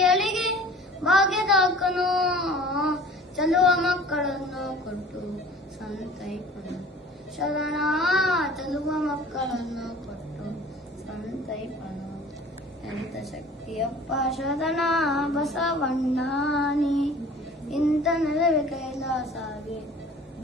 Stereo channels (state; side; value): normal; both; correlation 0.46